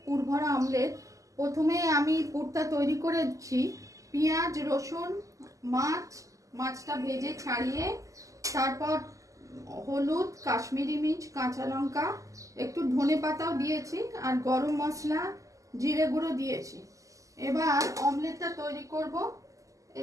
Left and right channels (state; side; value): late; left; 0.16 ms